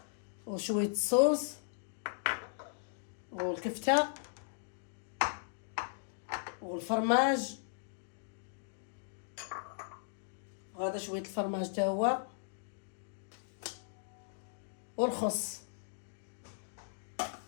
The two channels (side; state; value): right; silent; digital silence